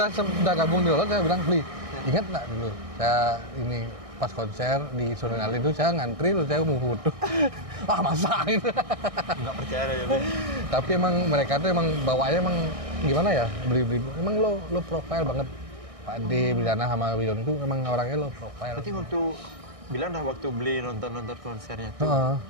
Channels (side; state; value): left; late; 1.6 ms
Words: gabung di Lolot, saya bilang, "Bli, ingat nggak dulu saya ini pas konser di Sonrenalin itu saya ngantri terus saya mau foto." Wah, masa gitu. Nggak percaya aja Bli. Tapi emang mereka tuh emang bawaannya emang gimana ya, beli emang lo profile banget. Pak D, Bidana sama Widon itu emang orangnya lo profile. Berarti waktu bilang dah waktu beli nonton konsernya tuh